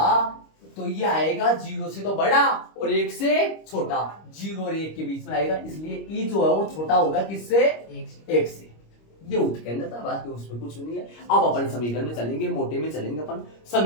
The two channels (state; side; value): late; right; 25 ms